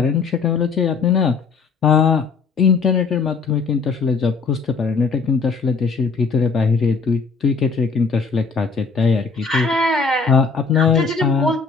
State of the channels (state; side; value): quieter; right; 4.8 dB